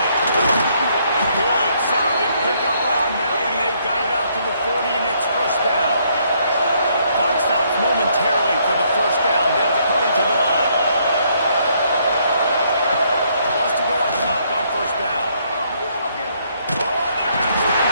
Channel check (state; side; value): inverted; both; correlation -0.70